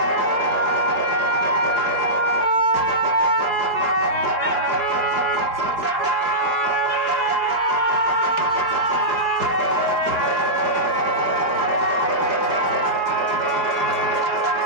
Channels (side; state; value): left; late; 4.7 ms